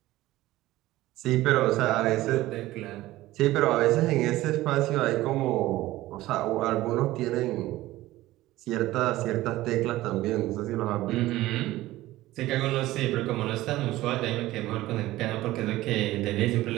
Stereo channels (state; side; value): quieter; left; 16.7 dB